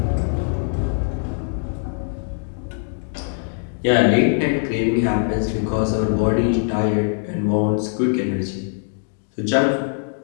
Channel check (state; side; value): silent; right; 58 dB below the other